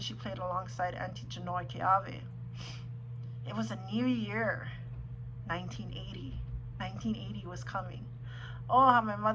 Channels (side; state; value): both; identical; correlation 1.00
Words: she played alongside Auntie Genoa Keawe. It was a new year, 1980. 1980 was coming. Oh, how my